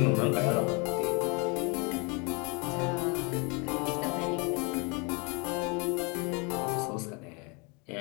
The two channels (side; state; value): right; quieter; 32.0 dB